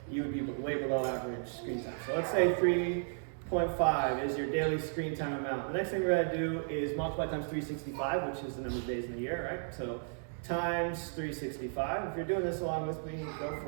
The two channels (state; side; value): silent; left; digital silence